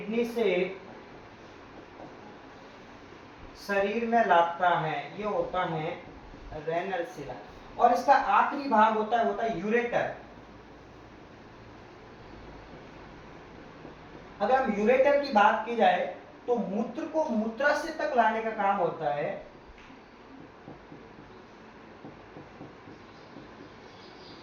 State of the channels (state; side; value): identical; both; correlation 1.00